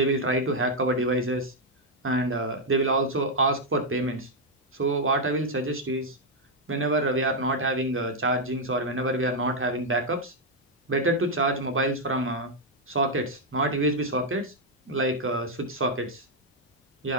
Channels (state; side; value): normal; both; correlation -0.01